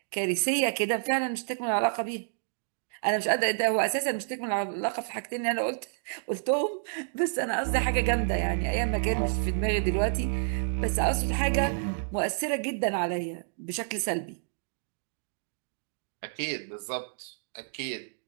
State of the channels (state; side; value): silent; left; digital silence